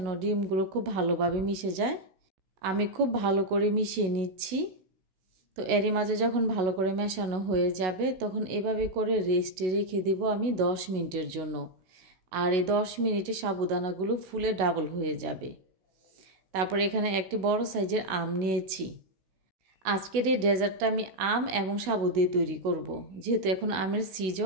ডিমগুলো খুব ভালোভাবে মিশে যায়। আমি খুব ভালো করে মিশিয়ে নিচ্ছি। তো এরই মাঝে যখন ভালো করে মেশানো হয়ে যাবে তখন এভাবে করে রেস্টে রেখে দেব আমি 10 মিনিটের জন্য। আর এই 10 মিনিটে সাবুদানাগুলো ফুলে ডাবল হয়ে যাবে। তারপর এখানে একটি বড় সাইজের আম নিয়েছি। আজকের এই ডেজার্টটা আমি আম এবং সাবু দিয়ে তৈরি করব। যেহেতু এখন আমের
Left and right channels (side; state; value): left; late; 16 ms